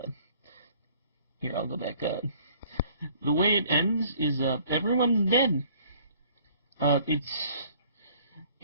here, I'll go back. The way it ends is everyone's dead.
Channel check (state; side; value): inverted; both; correlation -0.57